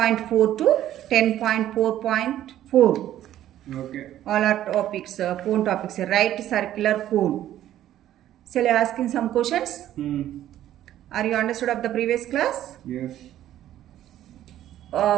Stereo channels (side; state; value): left; quieter; 12.4 dB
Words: to 10.4.4. Okay. All are topics, cone topics, right circular cone. Shall I ask in some questions? Are you understood of the previous class? Yes.